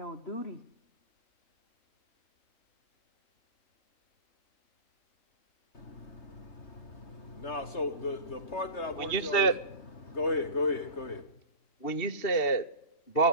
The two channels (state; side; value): late; right; 3.3 ms